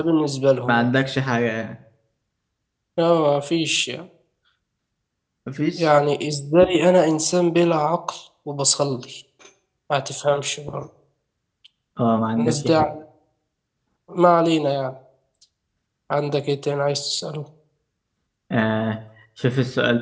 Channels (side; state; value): both; identical; correlation 1.00